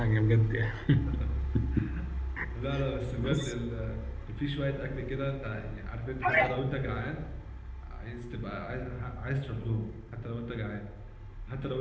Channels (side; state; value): both; identical; correlation 1.00